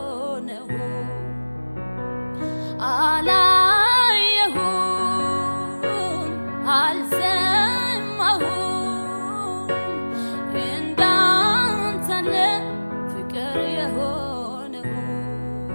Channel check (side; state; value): both; inverted; correlation -1.00